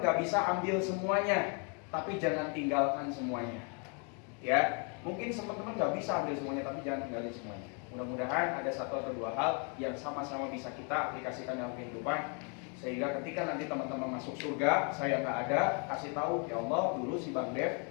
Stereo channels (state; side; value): quieter; right; 37.2 dB